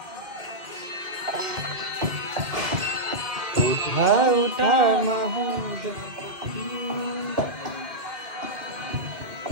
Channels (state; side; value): late; left; 2.2 ms